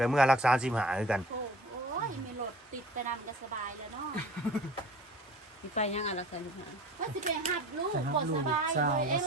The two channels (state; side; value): normal; both; correlation 0.44